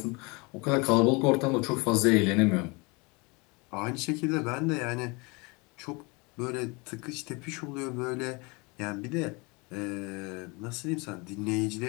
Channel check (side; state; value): right; quieter; 28.2 dB